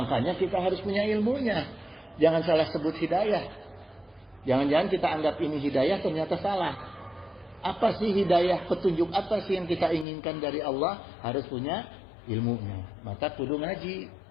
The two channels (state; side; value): drops out; right; at 10.1 s